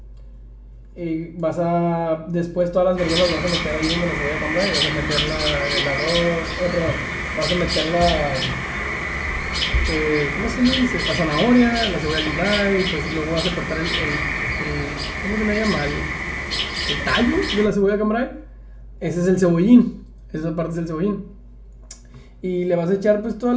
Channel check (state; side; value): identical; both; correlation 1.00